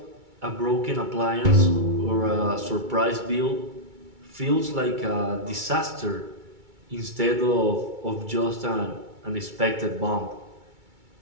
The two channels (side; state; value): left; late; 2.3 ms